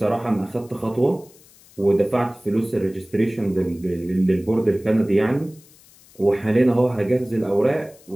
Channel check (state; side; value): noise; left; hiss, 26 dB below the sound